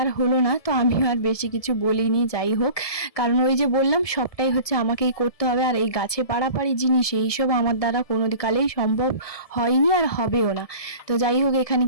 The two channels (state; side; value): late; right; 1.7 ms